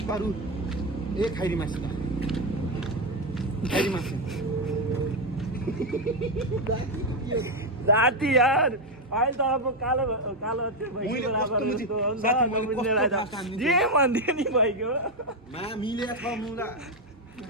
ए खैरी मासका खैरी मासेन जाति यार अहिले त अब कालो त्यो जे भन्दियो नि भइगयो मिल्या छ मुला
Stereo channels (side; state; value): both; normal; correlation 0.07